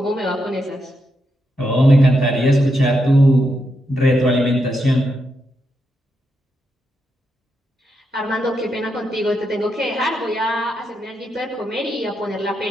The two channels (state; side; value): normal; both; correlation 0.83